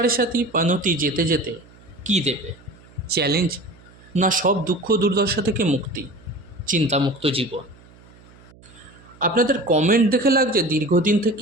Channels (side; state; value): right; noise; hum, 25 dB below the sound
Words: সাতি পানতি যেতে যেতে কী দেবে? চ্যালেঞ্জ, না সব দুঃখ দুর্দশা থেকে মুক্তি, চিন্তামুক্ত জীবন? আপনাদের কমেন্ট দেখে লাগছে দীর্ঘদিন